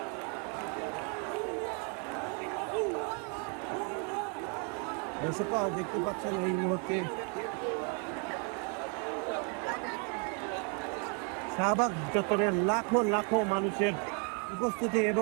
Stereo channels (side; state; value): left; quieter; 38.4 dB